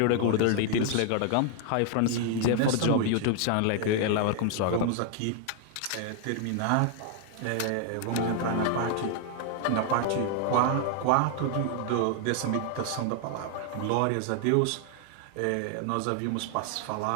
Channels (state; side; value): different; both; correlation 0.00